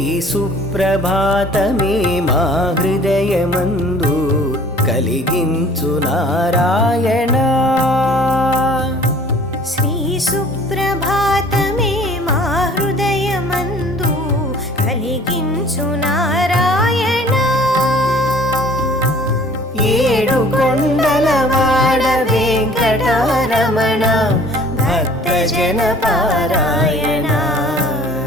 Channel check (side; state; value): both; normal; correlation 0.51